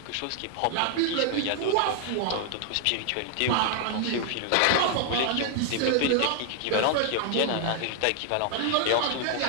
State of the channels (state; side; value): different; both; correlation 0.00